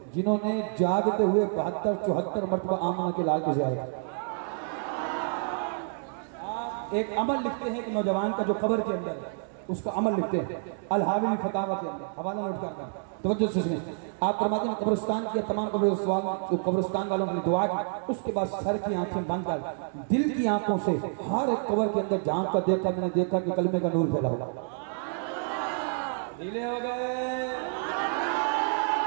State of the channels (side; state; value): left; silent; 59 dB below the other